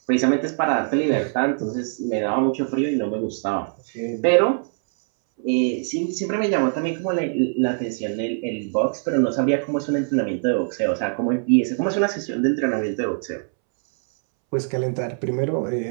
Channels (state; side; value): silent; left; 64 dB below the other